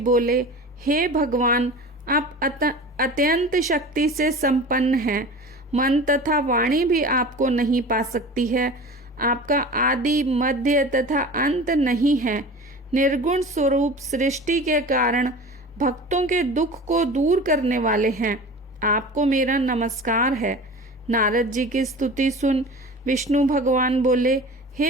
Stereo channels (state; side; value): normal; both; correlation 0.36